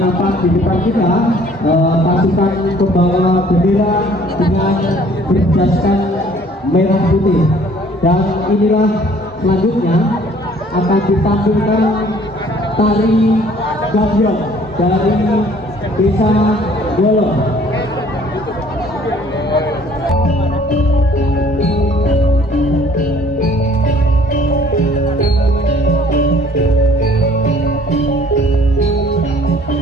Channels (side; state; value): both; normal; correlation 0.56